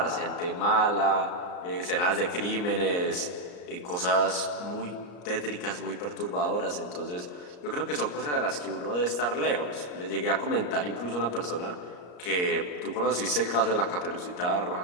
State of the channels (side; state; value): right; late; 34 ms